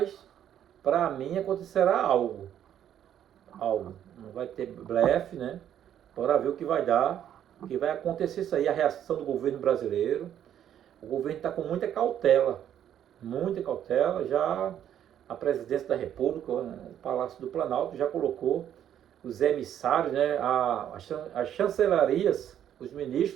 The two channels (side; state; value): left; quieter; 10.2 dB